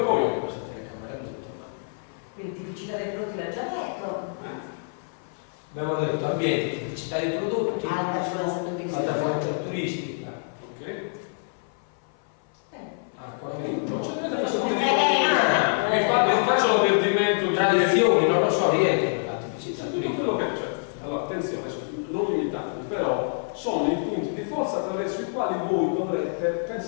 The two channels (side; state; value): right; silent; 57 dB below the other